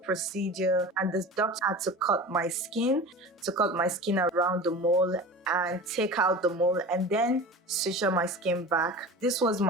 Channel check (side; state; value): both; normal; correlation 0.34